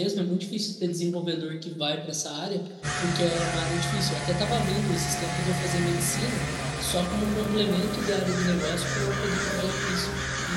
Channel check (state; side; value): identical; both; correlation 1.00